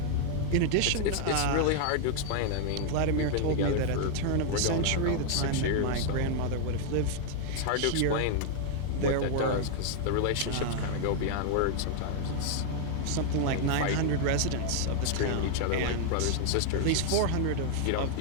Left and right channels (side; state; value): both; different; correlation 0.00